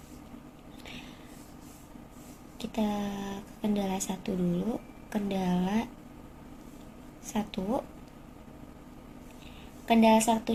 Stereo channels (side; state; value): both; identical; correlation 1.00